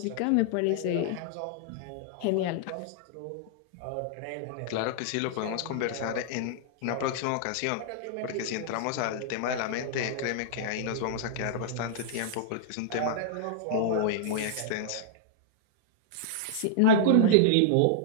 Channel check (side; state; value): both; different; correlation -0.01